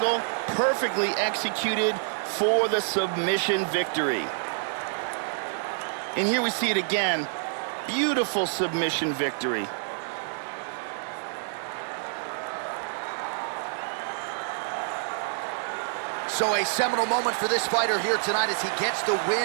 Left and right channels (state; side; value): silent; left; digital silence